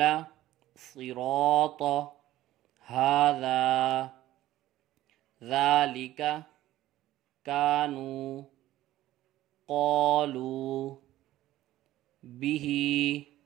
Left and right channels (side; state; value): left; quieter; 14.9 dB